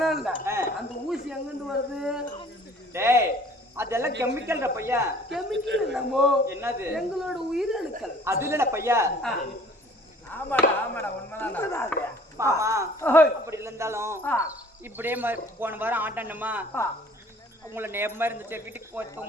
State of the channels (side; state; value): both; normal; correlation 0.52